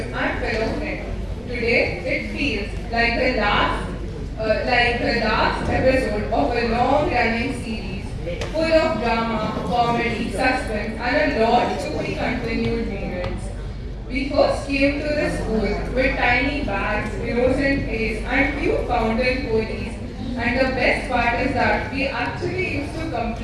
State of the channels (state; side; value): identical; both; correlation 1.00